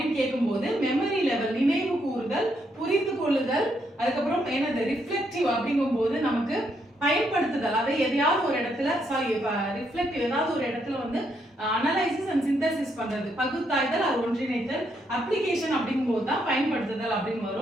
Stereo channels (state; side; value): normal; both; correlation 0.76